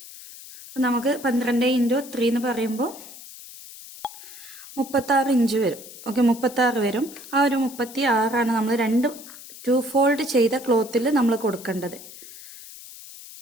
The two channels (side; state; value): left; noise; hiss, 16 dB below the sound